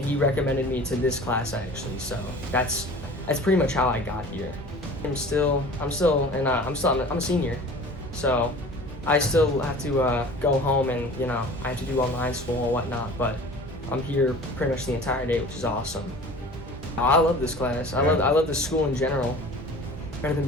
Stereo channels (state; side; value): normal; both; correlation 0.42